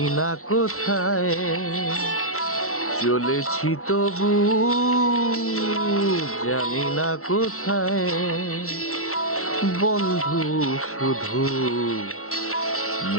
না কোথায়, চলেছি তবু জানি না কোথায়। বন্ধু শুধু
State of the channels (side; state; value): right; late; 0.63 ms